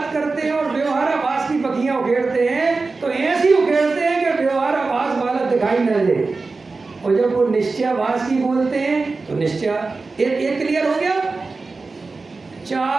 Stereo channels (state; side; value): quieter; left; 3.9 dB